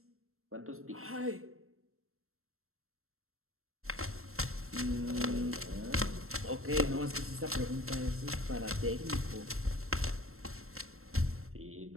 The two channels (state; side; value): late; left; 0.62 ms